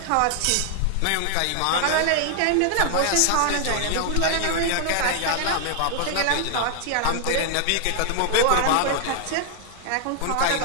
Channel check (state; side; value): different; both; correlation 0.00